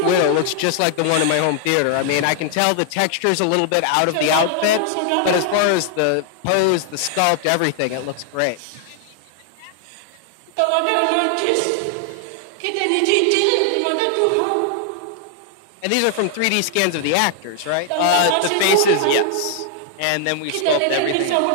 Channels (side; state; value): both; different; correlation 0.00